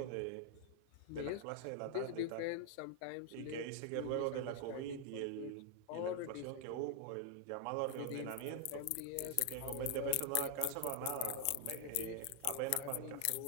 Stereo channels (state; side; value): different; both; correlation 0.00